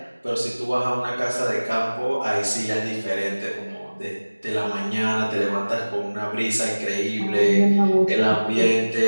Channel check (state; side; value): inverted; both; correlation -1.00